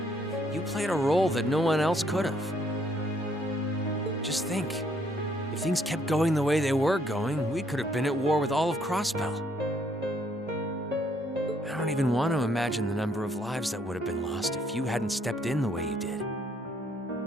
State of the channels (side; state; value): both; normal; correlation 0.68